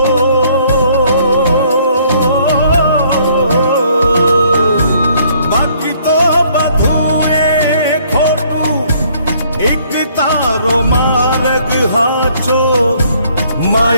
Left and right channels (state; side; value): inverted; both; correlation -0.63